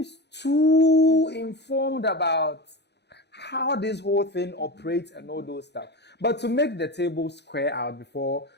too informed about how this whole thing operates and all those stuff. But to make the table square out before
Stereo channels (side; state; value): right; late; 0.49 ms